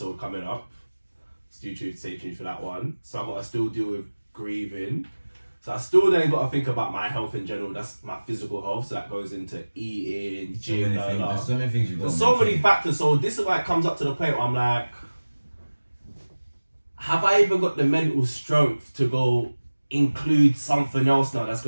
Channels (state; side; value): inverted; both; correlation -1.00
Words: coming up. Stay tuned for that one. So I've got to still deal with grieving. So I still then got to think about my health in general. That's my physical health. So that goes into eating, gym, There's so many things you've got. There's so many factors. So this is why it comes up to the point where I'm like, have I even got the mental strength to go include something else now that's